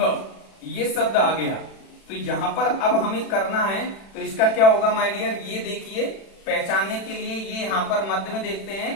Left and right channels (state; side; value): late; right; 36 ms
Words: ये शब्द आ गया। तो यहां पर अब हमें करना है, तो इसका क्या होगा माय डियर? ये देखिए, पहचानने के लिए ये यहां पर मध्य में देखते